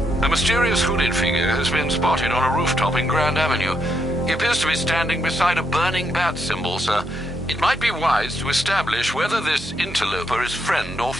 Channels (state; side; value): normal; both; correlation 0.78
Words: A mysterious hooded figure has been spotted on a rooftop in Grand Avenue. He appears to be standing beside a burning bat symbol, sir. It might be wise to establish whether this interloper is friend or